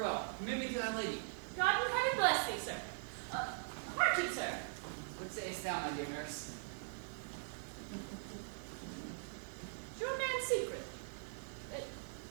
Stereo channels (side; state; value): left; silent; 50 dB below the other